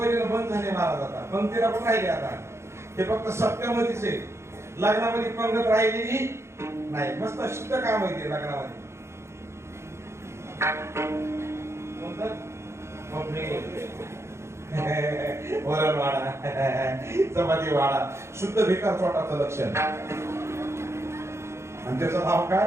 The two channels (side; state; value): left; late; 0.13 ms